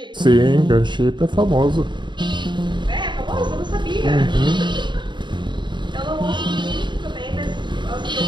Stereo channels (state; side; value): late; left; 0.22 ms